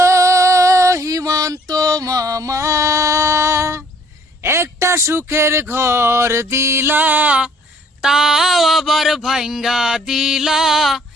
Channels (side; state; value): both; normal; correlation 0.59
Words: হিমান্ত মামা, একটা সুখের ঘর দিলা, তাও আবার ভাঙ্গা দিলা।